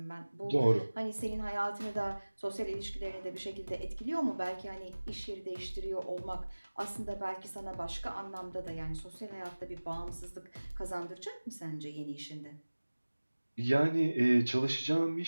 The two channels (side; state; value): both; inverted; correlation -1.00